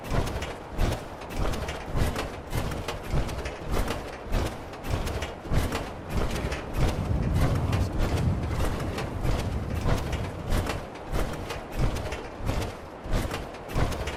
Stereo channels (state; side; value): identical; both; correlation 1.00